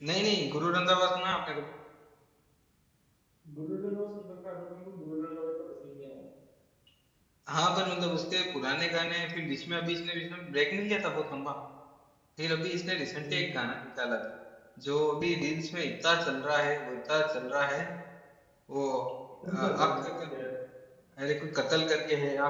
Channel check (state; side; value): identical; both; correlation 1.00